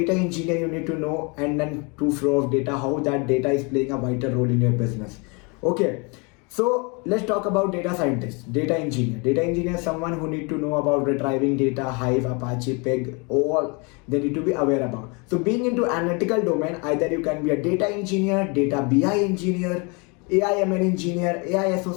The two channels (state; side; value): quieter; right; 31.2 dB